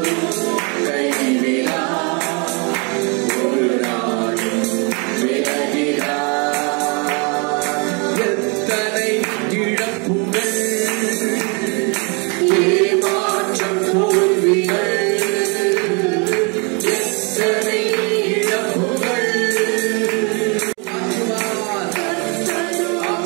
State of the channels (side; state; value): left; quieter; 33.0 dB